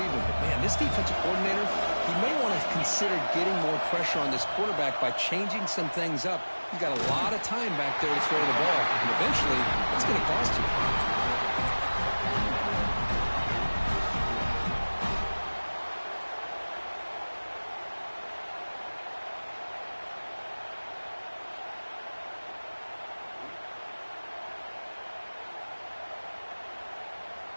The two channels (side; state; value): both; inverted; correlation -1.00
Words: But, man, this defensive coordinator, he may want to consider getting more pressure on this quarterback by changing some things up. He's got a lot of time back there to throw the ball. And eventually, it's going to cost you.